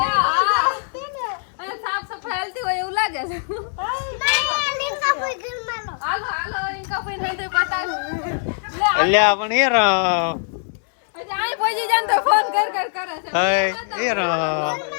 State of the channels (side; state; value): right; silent; digital silence